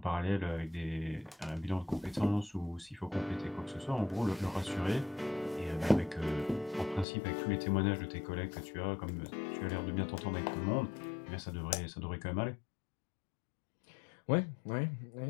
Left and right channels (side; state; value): right; drops out; at 7.1 s